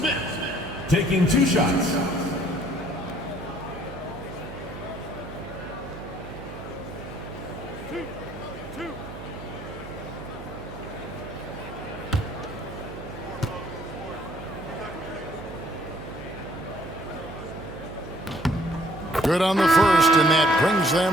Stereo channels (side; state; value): right; noise; hum, 12 dB below the sound